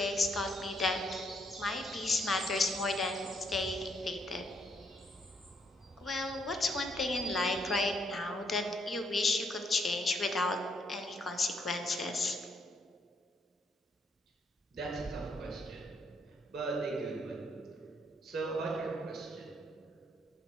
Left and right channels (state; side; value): normal; both; correlation 0.72